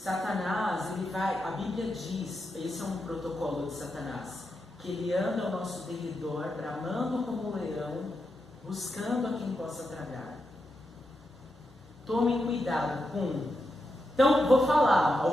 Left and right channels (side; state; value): both; normal; correlation 0.86